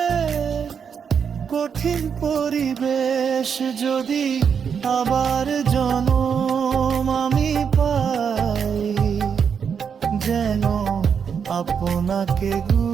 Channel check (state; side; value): quieter; left; 6.9 dB